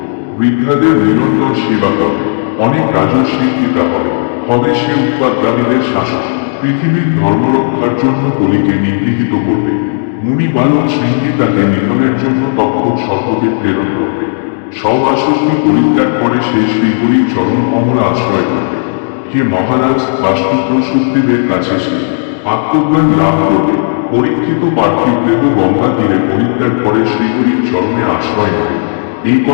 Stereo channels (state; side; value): silent; right; digital silence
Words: বৃদ্ধাদের নিরন্তর সেবা করবে, অনেক রাজস্বীর পিতা হবে, হবে সে উৎপাদকারীদের শাসক, পৃথিবীর ধর্মরক্ষার জন্য কলিকে নিগৃহীত করবে। মুনি বালক শৃঙ্গী তাকে নিধনের জন্য তক্ষক সর্পকে প্রেরণ করবে। সব আসক্তি পরিত্যাগ করে সে শ্রীহরির চরণ কমল আশ্রয় করবে। হে মহারাজ, বাস্তুপুত্র শুকদেবের কাছে সে আত্মজ্ঞান লাভ করবে। পরীক্ষিত পার্থিব দেহ গঙ্গা তীরে পরিত্যাগ করে শ্রীহরির চরণে আশ্রয় নেবে। এই